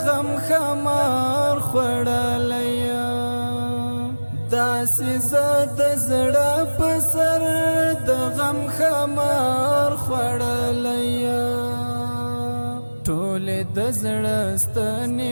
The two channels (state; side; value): inverted; both; correlation -1.00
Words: غم خمار خوړلی یم داسې زه د زړه په سر د غم خمار خوړلی یم ټولې د زړه ستنې